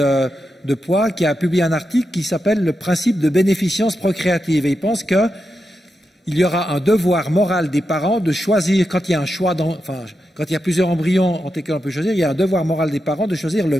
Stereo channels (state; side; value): normal; both; correlation 0.87